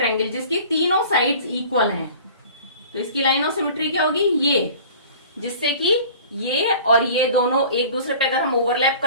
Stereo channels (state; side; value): inverted; both; correlation -0.44